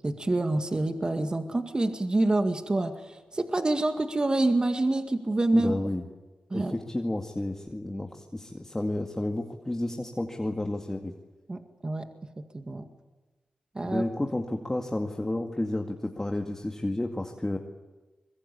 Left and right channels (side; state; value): both; normal; correlation 0.96